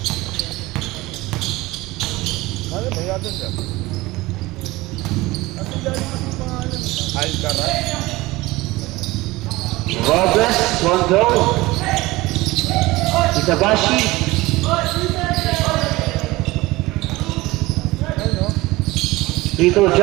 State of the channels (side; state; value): left; quieter; 20.1 dB